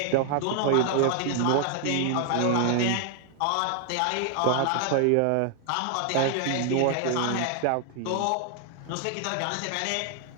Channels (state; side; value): different; both; correlation 0.00